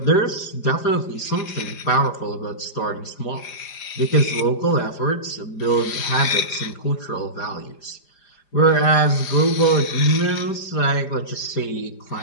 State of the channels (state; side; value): late; right; 5.0 ms